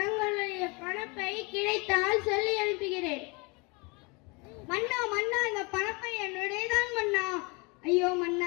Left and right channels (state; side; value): quieter; right; 29.2 dB